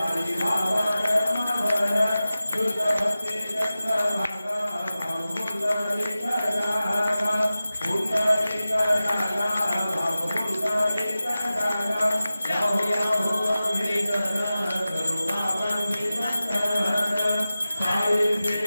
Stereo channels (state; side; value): inverted; both; correlation -0.95